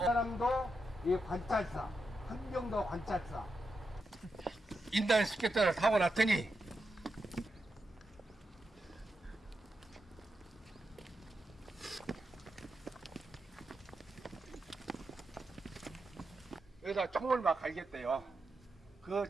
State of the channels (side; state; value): both; normal; correlation 0.86